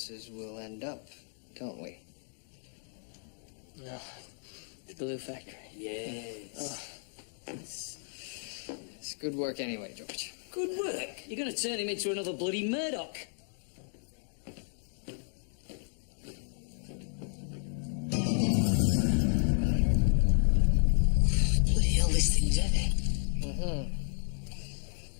will end up, don't we? No. The glue factory. Yes. It's good work anyway, George. Good work. You're going to turn him into another bloody Murdoch. Bloody hell, this thing's heavy.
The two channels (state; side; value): silent; right; 56 dB below the other